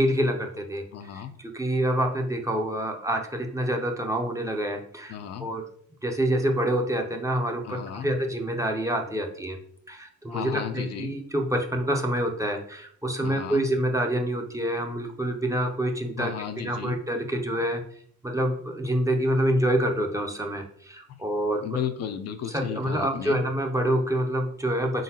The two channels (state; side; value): normal; both; correlation 0.65